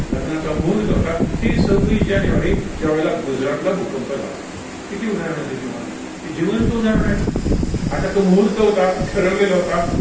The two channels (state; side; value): identical; both; correlation 1.00